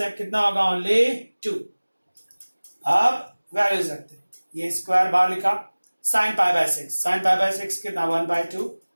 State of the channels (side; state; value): both; inverted; correlation -1.00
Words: कितना होगा, ओनली 2। अब वैल्यूज रखते हैं, ये स्क्वायर बाहर लिखा, sign pi by 6, sine pi by 6 कितना 1/2,